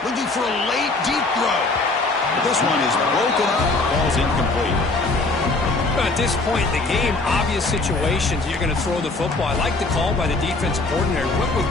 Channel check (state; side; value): quieter; right; 3.3 dB